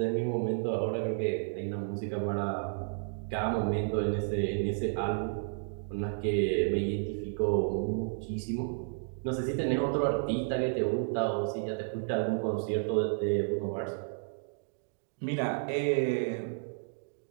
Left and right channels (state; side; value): silent; left; digital silence